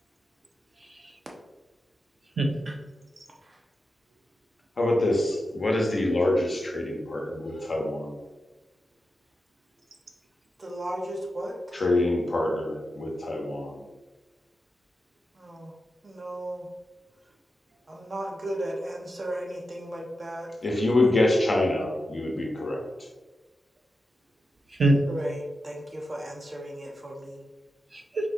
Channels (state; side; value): normal; both; correlation 0.89